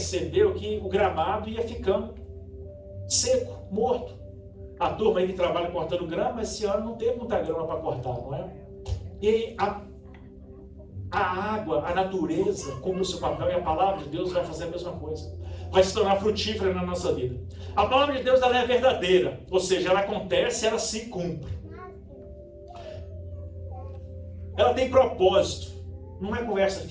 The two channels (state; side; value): identical; both; correlation 1.00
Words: que o gramado ia ficando seco, morto. A turma aí que trabalha cortando grama, esse ano não teve muita grama para cortar, não é? E a água, a natureza, cumpre o seu papel, e a palavra de Deus vai fazer a mesma coisa. Vai se tornar frutífera na nossa vida. A palavra de Deus, ela é verdadeira, ou seja, ela acontece, ela se cumpre. Ela tem propósito. Não é conversa